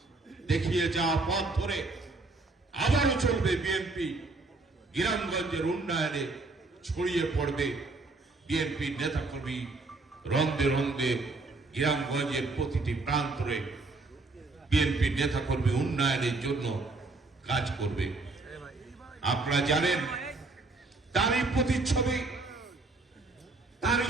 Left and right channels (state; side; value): quieter; left; 3.5 dB